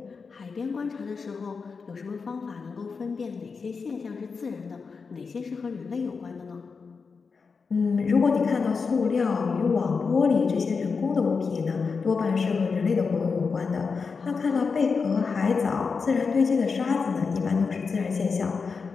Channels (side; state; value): right; quieter; 5.1 dB